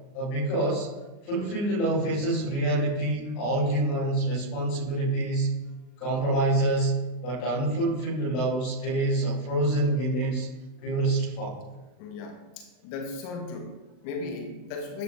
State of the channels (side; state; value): right; late; 39 ms